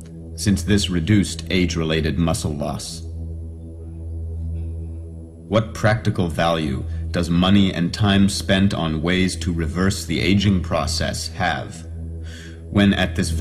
since this reduced age-related muscle loss. What practical value does money and time spent on ways to reverse the aging process have, when at this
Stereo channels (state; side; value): identical; both; correlation 1.00